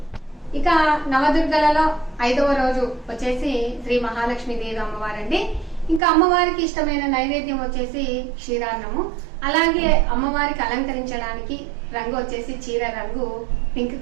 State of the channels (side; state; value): left; drops out; at 6.0 s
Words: ఇక నవదుర్గలలో 5వ రోజు వచ్చేసి శ్రీ మహాలక్ష్మి దేవి అమ్మవారండి. ఇంకా అమ్మవారికి ఇష్టమైన నైవేద్యం వచ్చేసి క్షీరాన్నము. అలాగే అమ్మవారికి అలంకరించడానికి రంగు వచ్చేసి చీర రంగు పింక్